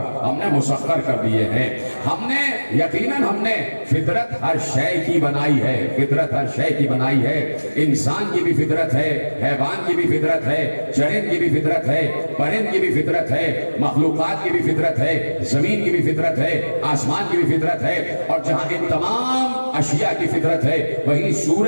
ہم نے مسخر کر دیے ہیں۔ ہم نے یقیناً ہم نے فطرت ہر شے کی بنائی ہے، فطرت ہر شے کی بنائی ہے، انسان کی بھی فطرت ہے، حیوان کی بھی فطرت ہے، چرند کی بھی فطرت ہے، پرند کی بھی فطرت ہے، مخلوقات کی بھی فطرت ہے، زمین کی بھی فطرت ہے، آسمان کی بھی فطرت ہے، اور جہاں ان تمام اشیاء کی فطرت ہے وہیں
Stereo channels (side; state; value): both; inverted; correlation -1.00